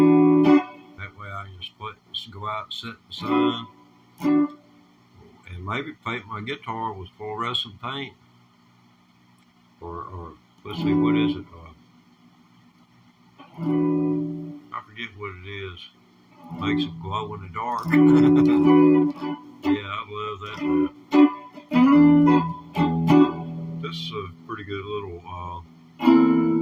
That way I can just go out and sit in the sun, and maybe paint my guitar with fluorescent paint, or let's see, what is it? I forget what it is. Makes it glow in the dark. Yeah, I love that. This is a pretty good little.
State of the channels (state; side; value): identical; both; correlation 1.00